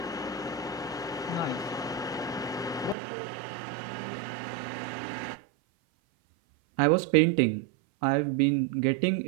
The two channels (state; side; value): drops out; left; at 3.0 s